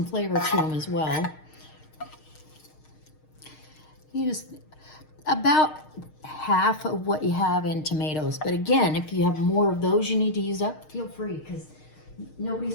flavor to them as well. You just, about half of what you have in tomatoes. But again, if you have more of those you need to use up, feel free, because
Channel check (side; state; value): right; late; 6.5 ms